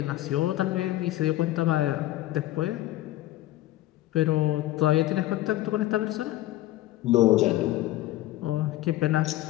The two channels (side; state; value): right; quieter; 15.5 dB